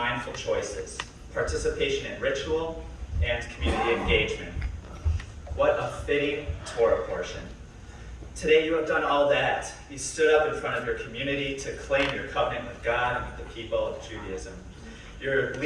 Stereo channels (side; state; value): both; identical; correlation 1.00